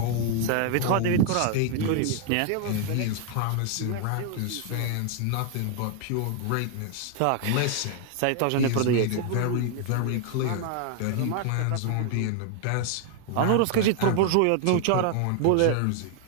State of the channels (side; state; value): both; different; correlation 0.00